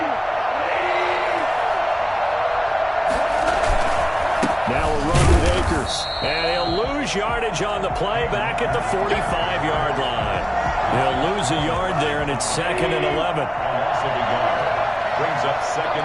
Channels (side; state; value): both; identical; correlation 1.00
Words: Now a run with Akers. And he'll lose yardage on the play back at the 45-yard line. He'll lose a yard there, and it's 2nd and 11. Brings up 2nd